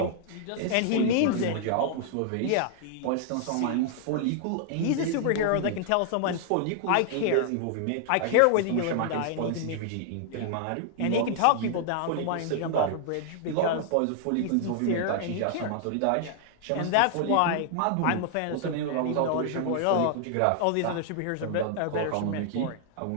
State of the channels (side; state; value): both; different; correlation -0.01